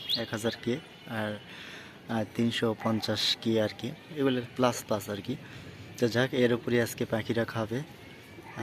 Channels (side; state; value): both; identical; correlation 1.00